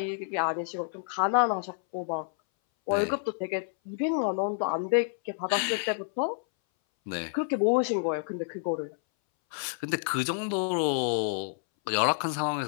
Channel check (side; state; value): right; silent; 59 dB below the other